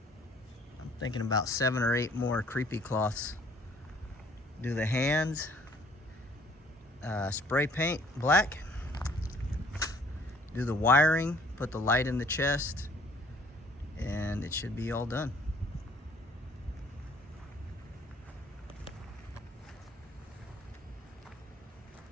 I'm thinking about 7 or 8 more creepy cloths. Do the hands, spray paint black, do the wiring, put the light in the chest, and it should be all done.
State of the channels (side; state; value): both; normal; correlation 0.59